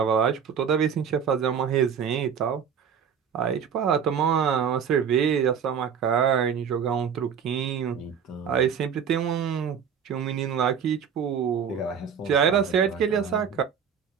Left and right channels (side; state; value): left; quieter; 7.3 dB